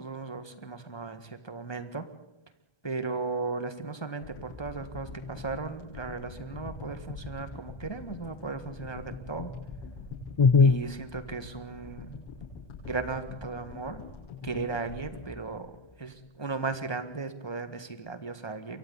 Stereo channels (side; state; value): right; late; 1.2 ms